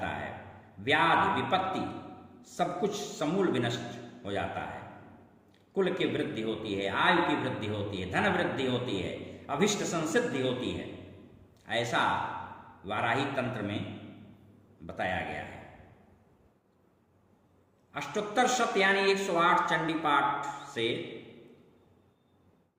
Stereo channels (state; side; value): identical; both; correlation 1.00